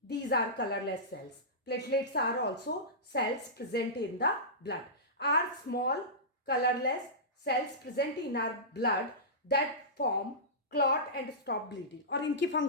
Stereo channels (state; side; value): normal; both; correlation -0.17